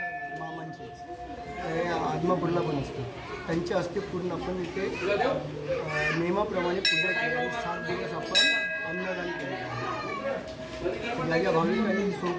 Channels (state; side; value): identical; both; correlation 1.00